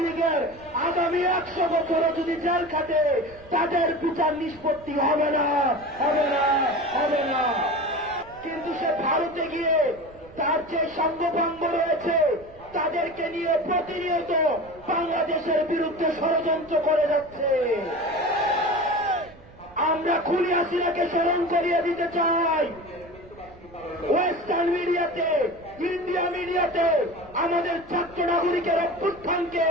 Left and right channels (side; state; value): right; noise; rumble, 23 dB below the sound